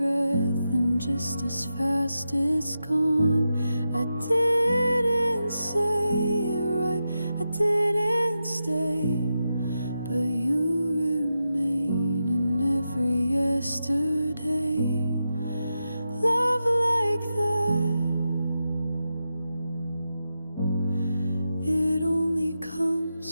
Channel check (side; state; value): both; inverted; correlation -0.89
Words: and just as fast it's gone. I didn't say it right, I didn't stay, but you remain in every yesterday. Love like that, it only